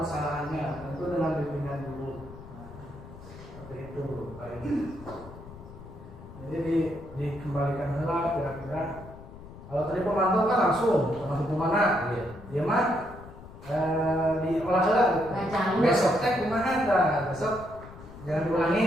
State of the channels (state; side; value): noise; left; rumble, 16 dB below the sound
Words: tentu dengan bimbingan guru. Seperti itu, baik. Jadi dikembalikan lah kira-kira. Kalau tadi pemantau kan langsung kemana? Dia mah diolah lah. Besok teh kumaha dah? Besok jangan